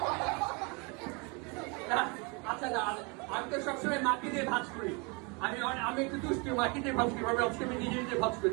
আচ্ছা না, আমি তো সবসময় মাকে দিয়ে ভাজ করি। আমি একটু দুষ্টু, মাকে দিয়ে ভাজ করি। আজকে আমি নিজে নিজে ভাজ করি,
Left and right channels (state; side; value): quieter; left; 30.7 dB